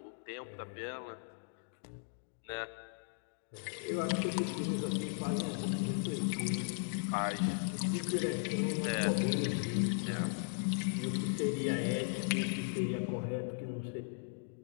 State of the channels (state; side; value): silent; right; digital silence